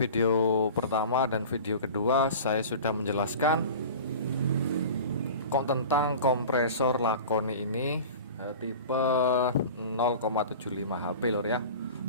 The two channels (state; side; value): inverted; both; correlation -0.37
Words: pertama dan video kedua saya sudah menjelaskan tentang kompresor Lakoni ini, tipe 0,75 HP Lur ya.